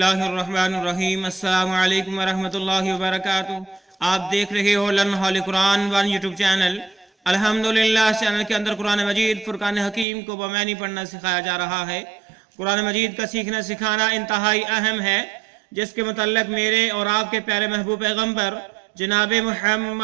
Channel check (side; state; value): left; drops out; at 10.1 s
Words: الرحمن الرحیم۔ السلام علیکم ورحمۃ اللہ وبرکاتہ۔ آپ دیکھ رہے ہو لرن ہال قرآن ون یوٹیوب چینل۔ الحمدللہ اس چینل کے اندر قرآن مجید فرقان حکیم کو بمعنی پڑھنا سکھایا جا رہا ہے۔ قرآن مجید کا سیکھنا سکھانا انتہائی اہم ہے، جس کے متعلق میرے اور آپ کے پیارے محبوب پیغمبر جناب